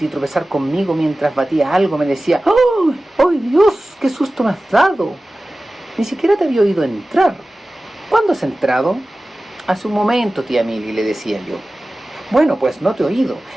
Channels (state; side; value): normal; both; correlation 0.96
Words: y tropezar conmigo mientras batía algo, me decía: ¡Oh, oh Dios! ¡Qué susto me has dado! Ni siquiera te había oído entrar. ¿Cuándo has entrado? Hace un momento, tía Milly, le decía yo. Bueno, pues no te he oído.